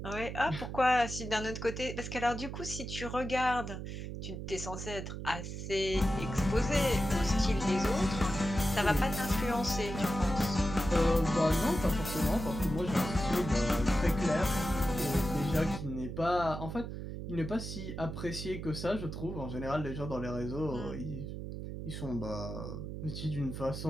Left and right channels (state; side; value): noise; right; hum, 7 dB below the sound